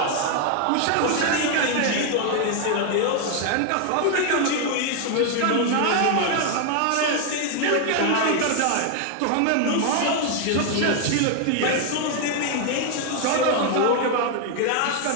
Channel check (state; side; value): different; both; correlation 0.01